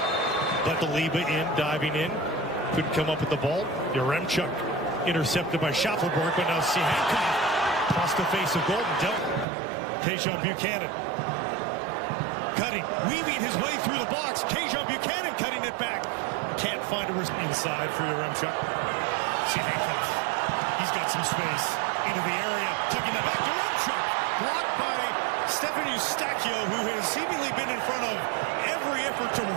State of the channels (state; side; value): drops out; left; at 9.5 s